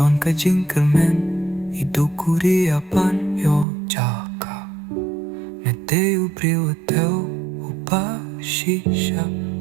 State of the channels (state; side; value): drops out; left; at 3.7 s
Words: ka jingkermen idukuri apan yo jaka. Mete ubriu ateu upa shisha,